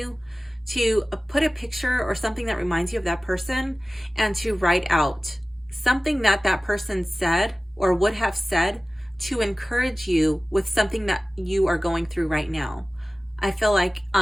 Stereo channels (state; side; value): normal; both; correlation 0.97